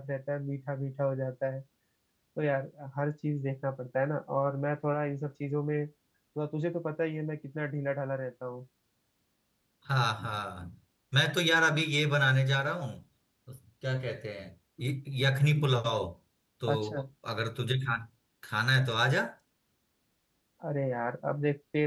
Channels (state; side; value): identical; both; correlation 1.00